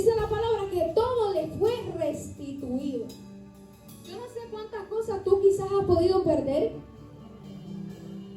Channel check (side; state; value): both; identical; correlation 1.00